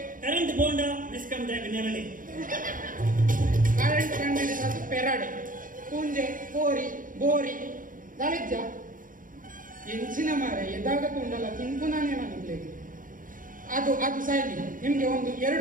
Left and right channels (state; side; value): late; left; 0.39 ms